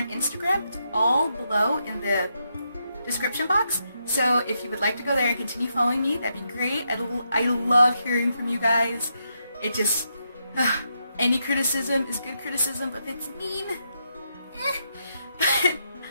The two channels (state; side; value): inverted; both; correlation -0.81